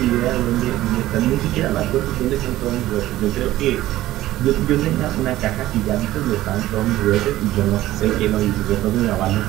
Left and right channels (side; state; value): left; quieter; 15.3 dB